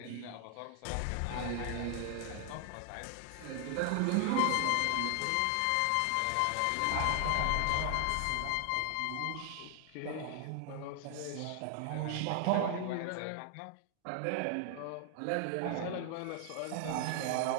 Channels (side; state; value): both; different; correlation 0.00